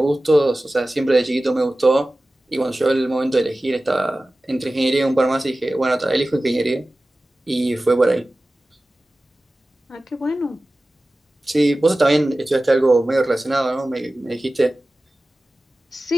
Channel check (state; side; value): normal; both; correlation 0.96